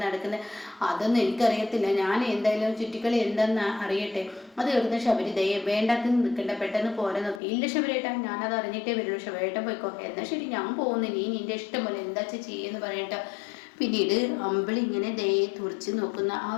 നടക്കുന്നത്? അതൊന്നും എനിക്കറിയത്തില്ല, ഞാൻ എന്തായാലും ചുറ്റിക്കളി എന്താണെന്ന് അറിയട്ടെ. അത് കേൾക്കുന്ന ശബരി ദയ വേണ്ടാത്ത നിൽക്കണ്ട, പെട്ടെന്ന് പോരാ നോക്കി. ഇല്ല ശബരിയേട്ടാ, ഞാനത് അറിഞ്ഞിട്ടേ വരുള്ളൂ, ശബരിയേട്ടൻ പോയിക്കോ. എന്നാൽ ശരി ഞാൻ പോകുന്നു, നീ നിന്റെ ഇഷ്ടം പോലെ എന്താ ചെയ്യുമെന്ന് പറയട്ടോ. പിന്നീട് അമ്പിളി ഇങ്ങനെ ദയെ തുറച്ച് നോക്കുന്ന ആ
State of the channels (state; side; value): drops out; right; at 7.4 s